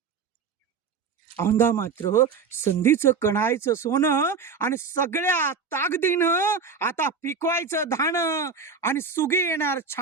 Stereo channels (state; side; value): quieter; left; 5.4 dB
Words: औंधा मात्र संधीचं कणायचं सोनं, आणि सगळ्या ताकदीनं आता पिकवायचं धानं, आणि सुगी येणार